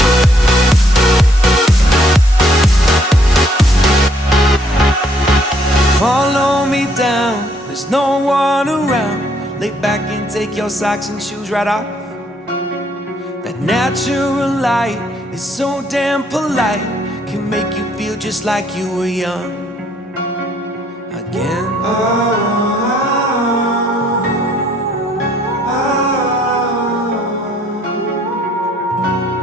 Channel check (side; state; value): both; normal; correlation 0.67